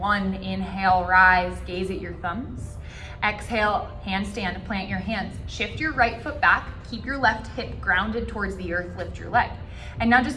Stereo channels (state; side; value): identical; both; correlation 1.00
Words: Inhale, rise, gaze at your thumbs. Exhale, handstand, plant your hands. Shift your right foot back, keep your left hip grounded towards the earth, lift your leg. And now